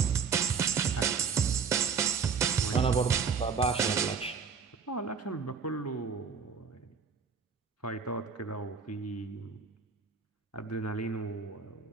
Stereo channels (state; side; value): quieter; left; 5.9 dB